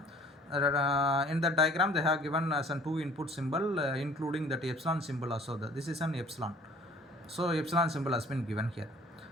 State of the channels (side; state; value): both; normal; correlation 0.52